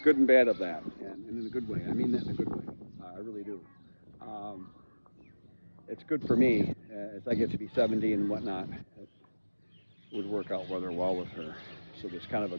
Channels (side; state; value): both; inverted; correlation -1.00